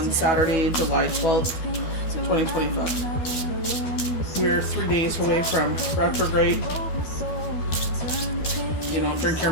Saturday, July 12th, 2025. We're 3 days away from retrograde. Drink your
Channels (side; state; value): right; late; 12 ms